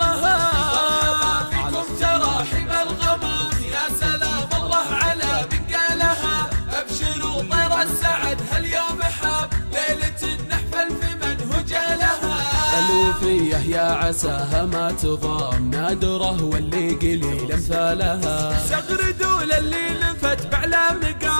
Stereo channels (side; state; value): both; inverted; correlation -1.00